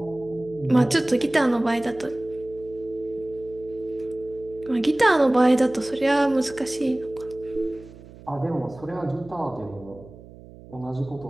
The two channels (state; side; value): noise; right; hum, 19 dB below the sound